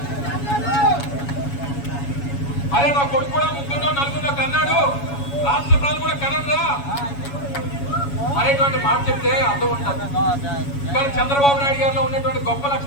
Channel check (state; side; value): late; right; 7.1 ms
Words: అదే నా కొడుకు కూడా 3, 4 కన్నాడు, రాష్ట్ర ప్రజలు కూడా కనరా అనేటువంటి మాట చెప్తే అర్థం ఉంటుంది. కానీ చంద్రబాబు నాయుడు గారిలో ఉన్నటువంటి గొప్ప